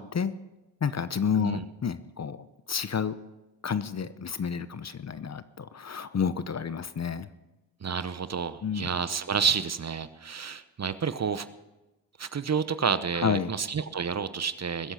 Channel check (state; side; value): normal; both; correlation 0.14